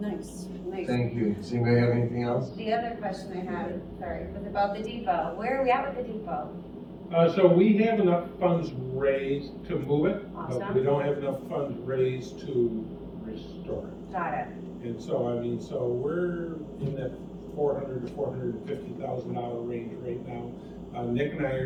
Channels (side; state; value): both; identical; correlation 1.00